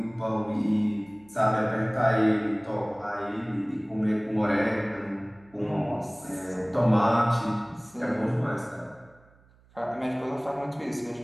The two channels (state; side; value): noise; right; hum, 29 dB below the sound